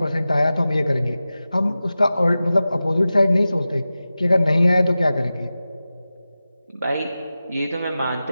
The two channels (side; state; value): both; inverted; correlation -0.95